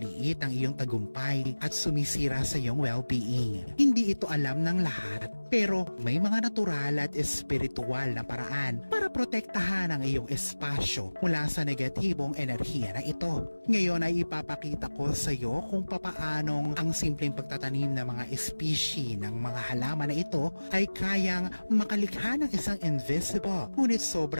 ang iyong tagumpay at sumisira sa iyong well-being. Hindi ito alam ng lahat, pero may mga natural at espiritual na paraan para protektahan ang iyong espasyo mula sa negatibong enerhiya na ito. Ngayon ay ipapakita ko sa iyo kung papaanong ang simpleng pagtatanim ng mga species ng mga halaman na ito ay kayang makalikha ng isang invisible ngunit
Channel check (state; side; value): inverted; both; correlation -1.00